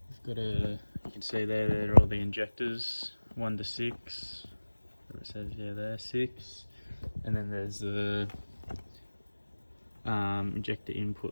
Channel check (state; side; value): inverted; both; correlation -1.00